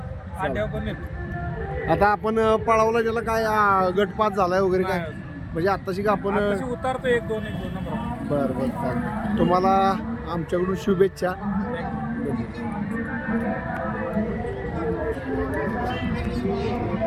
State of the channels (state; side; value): identical; both; correlation 1.00